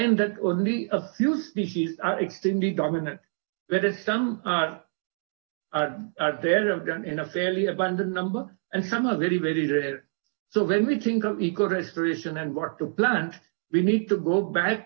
that only a few species are extremely dominant, whereas some are there in a fairly abundant number, and some are very, very rare. So when we think of eco-restoration and what to plant, we need to go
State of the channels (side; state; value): left; silent; 61 dB below the other